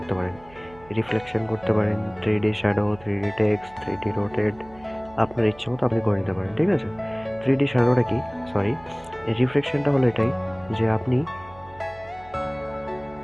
পারেন, রিফ্লেকশন করতে পারেন, 3D shadow, 3D text, 3D rotate, আপনার ইচ্ছে মতো আপনি করে নিতে পারেন, ঠিক আছে। 3D শ্যাডোটা কি, সরি, রিফ্লেকশনটা হলো এটাই যে আপনি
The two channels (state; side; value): noise; right; hum, 23 dB below the sound